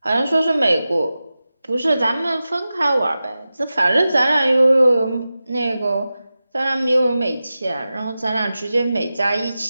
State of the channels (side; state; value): both; inverted; correlation -0.94